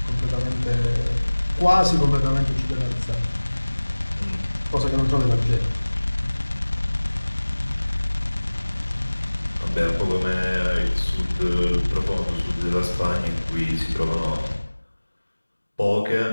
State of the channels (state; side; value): inverted; both; correlation -1.00